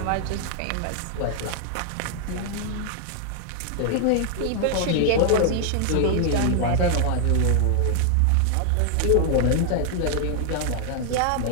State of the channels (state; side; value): different; both; correlation 0.00